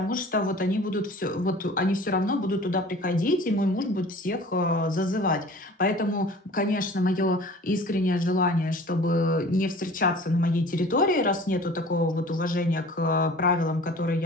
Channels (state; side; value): normal; both; correlation 0.45